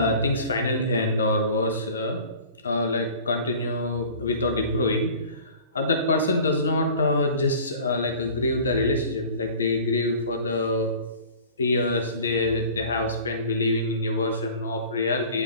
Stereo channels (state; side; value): inverted; both; correlation -0.44